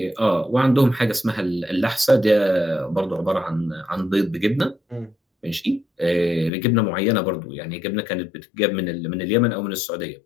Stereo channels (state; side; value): drops out; right; at 6.5 s